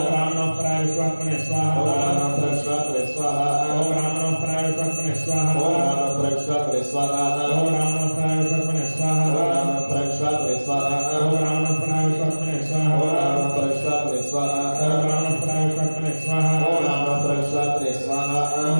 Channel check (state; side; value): inverted; both; correlation -1.00